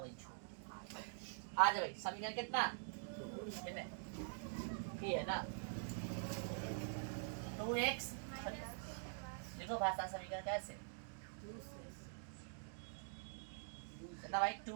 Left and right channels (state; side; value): silent; left; digital silence